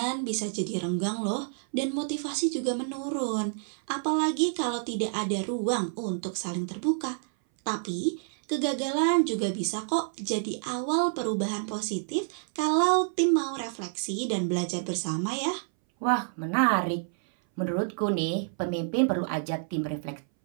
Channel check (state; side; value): silent; left; 59 dB below the other